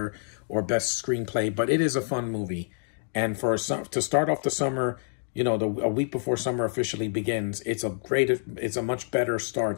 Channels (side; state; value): right; silent; digital silence